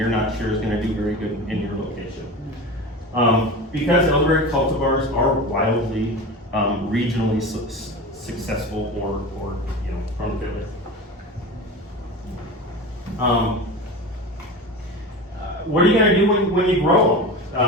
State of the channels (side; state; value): both; normal; correlation 0.29